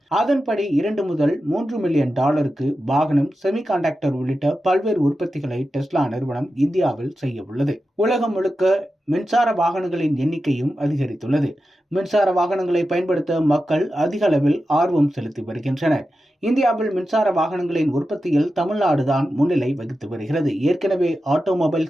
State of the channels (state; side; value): normal; both; correlation 0.91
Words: அதன்படி 2 முதல் 3 மில்லியன் டாலருக்கு வாகனம், செமிகண்டக்டர் உள்ளிட்ட பல்வேறு உற்பத்திகளை டெஸ்லா நிறுவனம் இந்தியாவில் செய்ய உள்ளது. உலகம் முழுக்க மின்சார வாகனங்களின் எண்ணிக்கையும் அதிகரித்துள்ளது. மின்சார வாகனங்களை பயன்படுத்த மக்கள் அதிக அளவில் ஆர்வம் செலுத்தி வருகின்றனர். இந்தியாவில் மின்சார வாகனங்களின் உற்பத்தியில் தமிழ்நாடுதான் முன்னிலை வகித்து வருகிறது. ஏற்கனவே